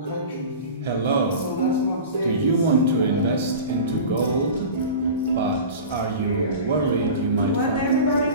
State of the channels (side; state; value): both; inverted; correlation -0.34